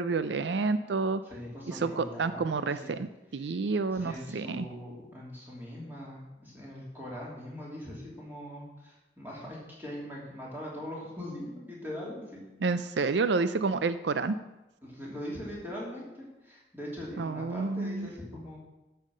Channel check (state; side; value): quieter; left; 3.2 dB